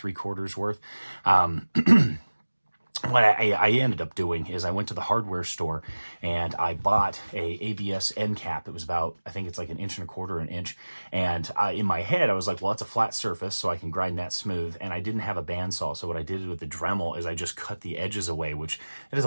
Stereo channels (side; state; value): both; inverted; correlation -1.00